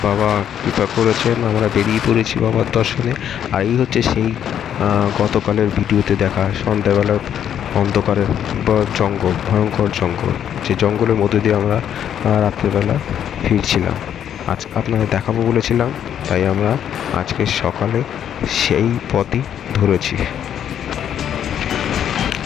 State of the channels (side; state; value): right; quieter; 9.5 dB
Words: বাবা কৃপা করেছেন, আমরা বেরিয়ে পড়েছি বাবার দর্শনে। আর এই হচ্ছে সেই গতকালের ভিডিওতে দেখা সন্ধ্যাবেলা অন্ধকারের জঙ্গল, ভয়ঙ্কর জঙ্গল, যে জঙ্গলের মধ্যে দিয়ে আমরা রাত্রেবেলা ফিরছিলাম। আজ আপনাদের দেখাবো বলেছিলাম, তাই আমরা আজকে সকালে সেই পথই ধরেছি।